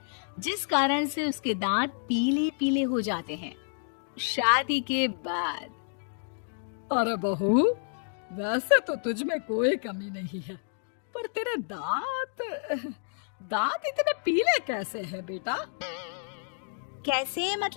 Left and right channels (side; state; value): right; silent; digital silence